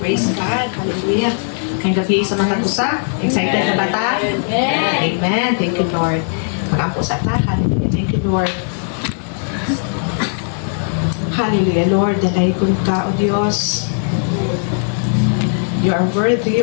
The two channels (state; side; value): silent; right; digital silence